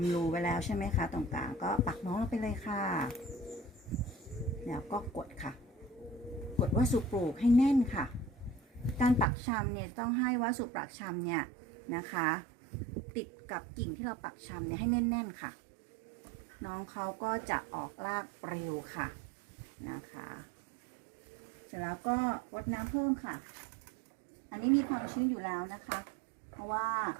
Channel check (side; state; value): left; drops out; at 9.2 s